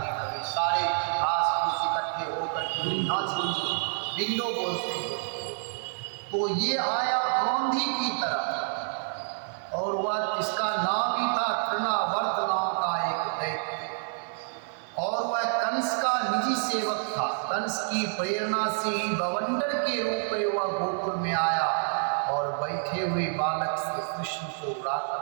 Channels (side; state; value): left; silent; 59 dB below the other